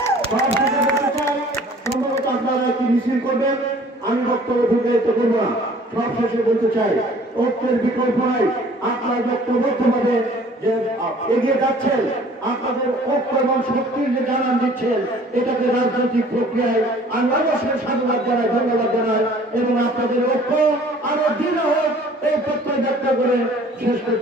সব শেষে বলতে চাই, সম্ভবত আপনারা একটি মিছিল করবেন, আমি বক্তব্য দীর্ঘায়িত করবো না। সব শেষে বলতে চাই, ঐক্যের বিকল্প নাই। আপনারা ঐক্যবদ্ধভাবে যে এগিয়ে যাচ্ছেন, আপনাদের ঐক্য এবং শক্তির যে জানান দিচ্ছেন, এটাকে রাজনৈতিক প্রক্রিয়ায় আমি অবশ্যই সাধুবাদ জানাই, ধন্যবাদ জানাই, এবং আপনাদের ঐক্য আরো দৃঢ় হোক এই প্রত্যয় ব্যক্ত করে শেষ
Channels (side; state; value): both; normal; correlation 0.52